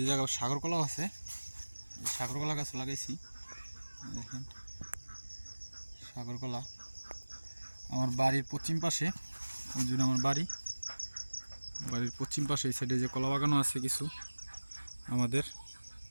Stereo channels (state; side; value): inverted; both; correlation -1.00